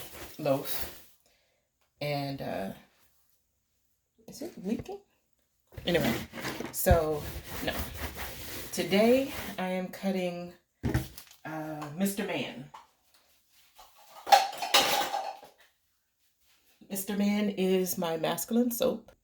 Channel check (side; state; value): both; identical; correlation 1.00